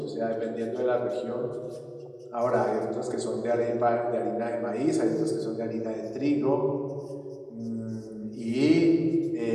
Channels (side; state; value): both; identical; correlation 1.00